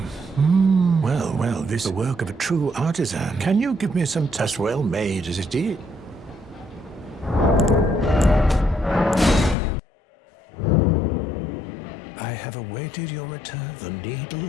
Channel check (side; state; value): right; drops out; at 9.6 s